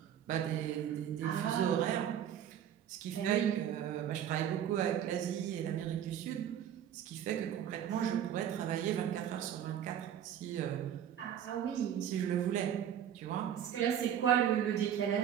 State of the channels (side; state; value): left; quieter; 9.8 dB